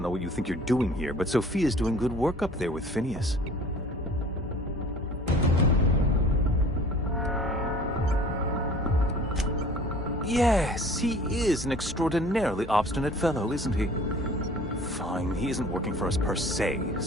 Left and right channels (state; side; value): normal; both; correlation 0.48